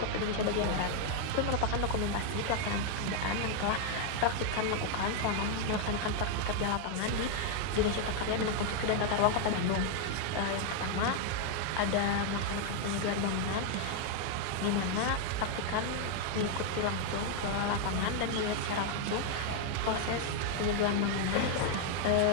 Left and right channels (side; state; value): both; different; correlation 0.00